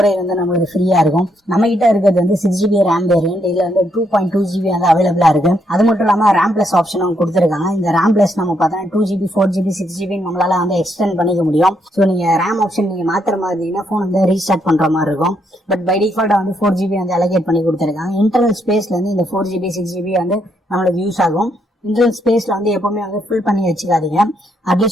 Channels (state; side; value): normal; both; correlation 0.75